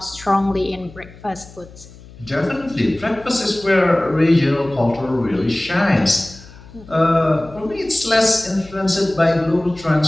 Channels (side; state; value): left; noise; hum, 20 dB below the sound